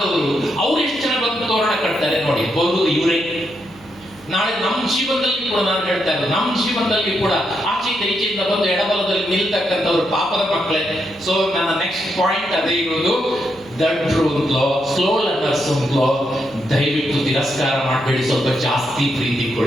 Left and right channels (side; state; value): right; noise; hum, 23 dB below the sound